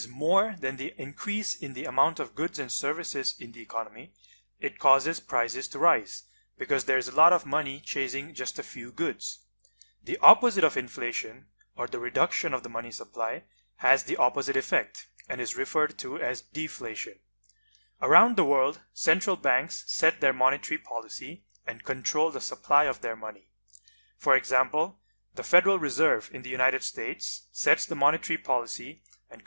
more than the increase in the amount of goods and services in the economy, it causes prices to rise, because there is a lot of money chasing just a few goods. The opposite of inflation, or the reduction of the money supply, has the opposite effect and is referred to as deflation. Around the world, central banks set their monetary policy and control the supply of their money. For example, the Federal Reserve in the United States sets the monetary policy and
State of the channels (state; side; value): inverted; both; correlation -1.00